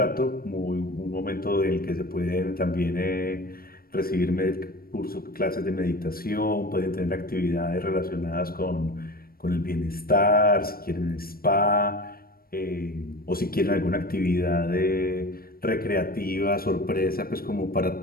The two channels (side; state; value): right; late; 0.43 ms